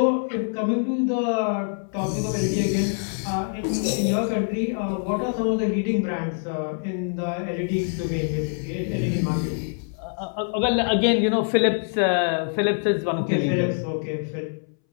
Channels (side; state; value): right; silent; 62 dB below the other